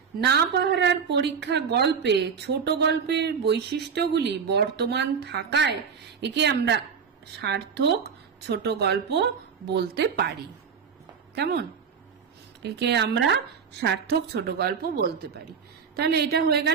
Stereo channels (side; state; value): left; quieter; 6.5 dB